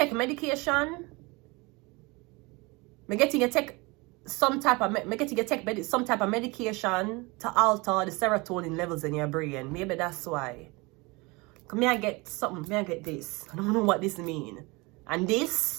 medication. Me getting you take some type of medication to alter the serotonin levels in your brain. Maybe that's why. May I get something? May I get this? I don't know what this means. And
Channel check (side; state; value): left; quieter; 25.6 dB